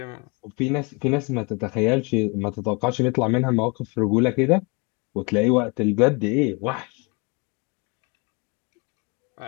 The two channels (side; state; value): right; quieter; 29.9 dB